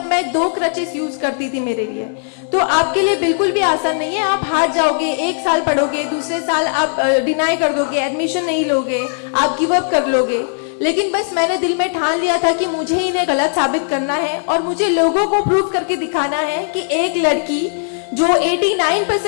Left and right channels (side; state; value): right; silent; digital silence